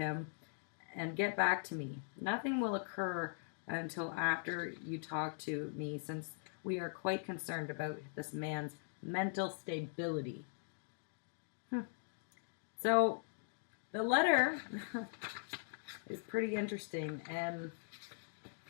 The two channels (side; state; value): right; silent; digital silence